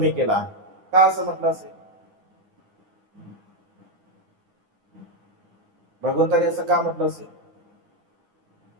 केला. का असं म्हटलं असेल? भगवंताने असं का म्हटलं असेल?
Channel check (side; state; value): left; late; 9.6 ms